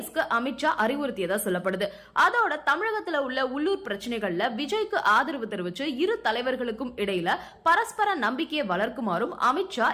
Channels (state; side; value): identical; both; correlation 1.00